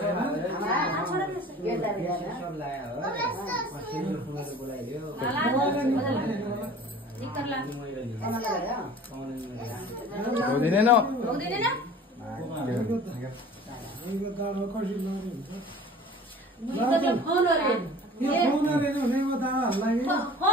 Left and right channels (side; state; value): both; normal; correlation 0.44